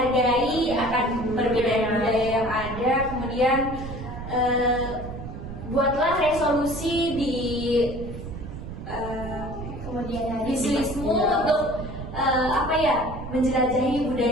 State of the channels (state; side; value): noise; right; rumble, 10 dB below the sound